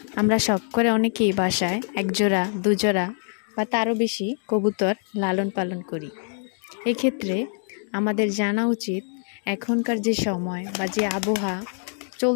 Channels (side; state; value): right; silent; 57 dB below the other